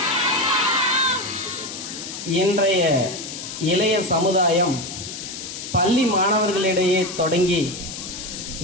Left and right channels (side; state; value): left; noise; hiss, 9 dB below the sound